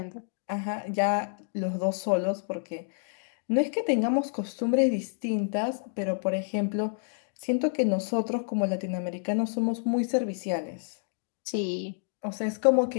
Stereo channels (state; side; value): silent; right; digital silence